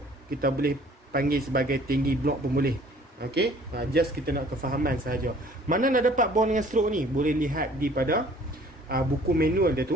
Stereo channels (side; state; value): both; normal; correlation 0.54